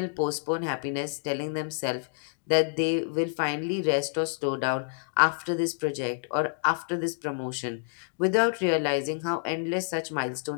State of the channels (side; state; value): right; silent; digital silence